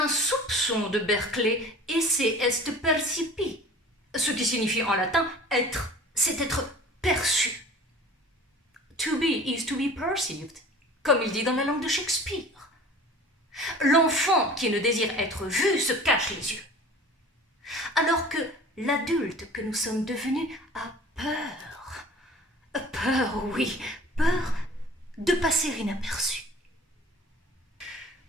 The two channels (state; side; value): normal; both; correlation 0.43